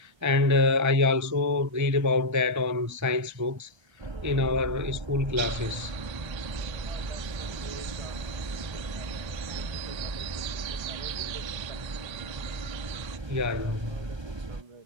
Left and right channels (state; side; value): late; left; 1.3 ms